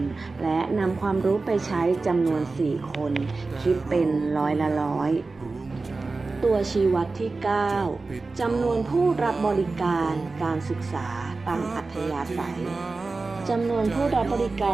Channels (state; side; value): quieter; left; 3.7 dB